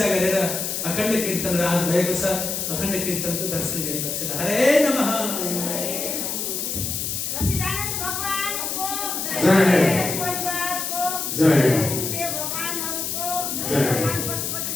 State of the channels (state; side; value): noise; left; hiss, 2 dB below the sound